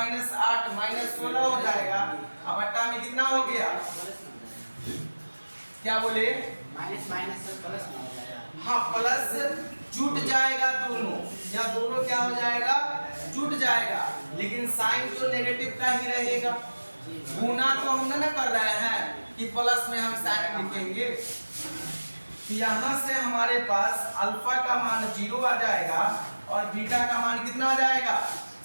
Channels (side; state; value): both; inverted; correlation -1.00